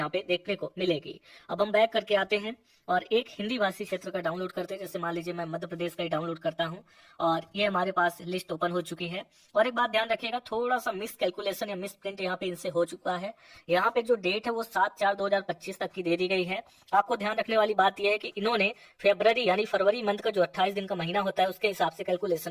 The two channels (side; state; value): both; identical; correlation 1.00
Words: पे देखने को मिलेगी। अब हम बैक करके आते हैं और एक हिंदी भाषी क्षेत्र का डाउनलोड करते हैं। जैसे मान लीजिए मैं मध्य प्रदेश का ही डाउनलोड करता हूँ और ये हमारे पास लिस्ट ओपन हो चुकी है। और एक बात ध्यान रखिएगा, थोड़ा सा मिस कैलकुलेशन या मिस प्रिंट यहाँ पे इनसे हो चुका है। यहाँ पे जो डेट है वो 7/4/2025 तक की दे दी गई है। आपको ध्यान रखने वाली बात यह है कि इन्होंने फरवरी यानी फरवरी मंथ का जो 28 दिन का महीना होता है उसके हिसाब से कैलकुलेशन